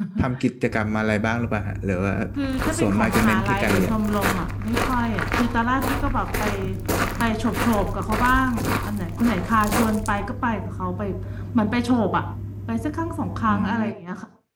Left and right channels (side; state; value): both; identical; correlation 1.00